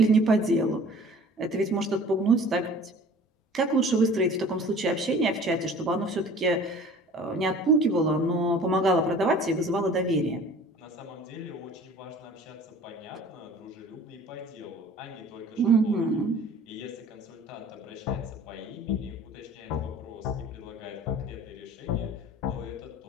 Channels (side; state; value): both; normal; correlation 0.47